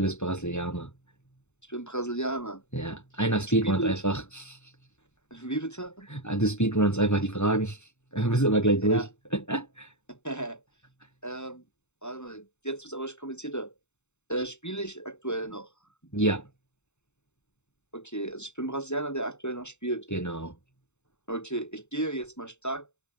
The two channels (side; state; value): right; late; 0.82 ms